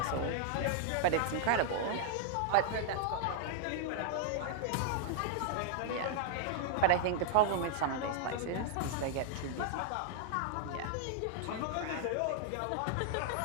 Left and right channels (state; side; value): different; both; correlation -0.01